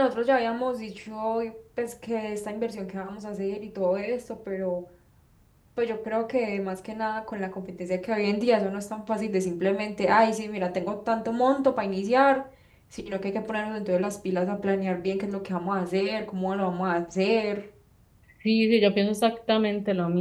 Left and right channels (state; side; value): identical; both; correlation 1.00